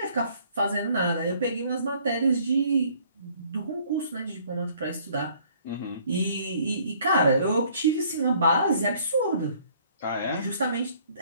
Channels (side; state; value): both; inverted; correlation -0.60